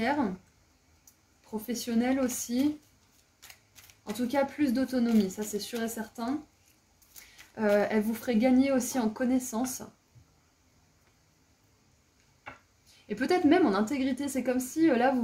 professionnelle aussi. En tout cas, plus d'autonomie, ça c'est sûr et certain. Elle vous ferait gagner aussi en connaissance. Et peut-être même en intégrité. C'est comme si là, vous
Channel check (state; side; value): identical; both; correlation 1.00